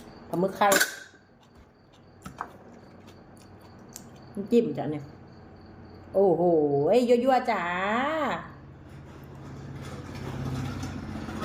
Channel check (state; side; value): identical; both; correlation 1.00